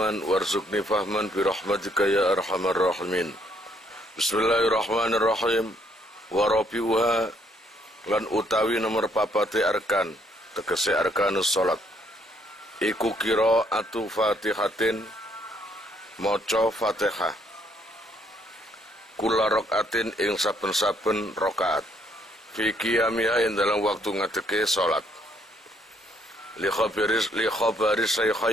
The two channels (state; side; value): normal; both; correlation 0.69